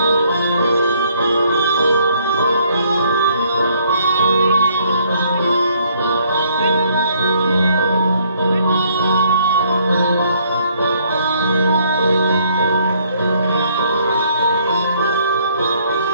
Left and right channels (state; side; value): inverted; both; correlation -0.65